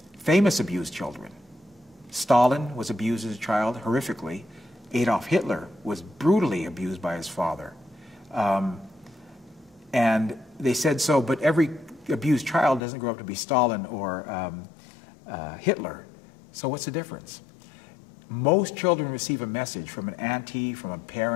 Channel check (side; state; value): right; drops out; at 12.8 s